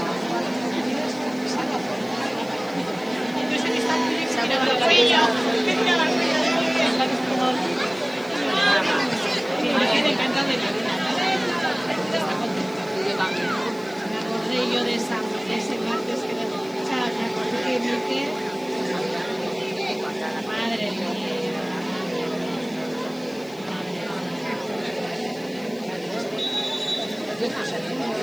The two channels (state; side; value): noise; left; hiss, 24 dB below the sound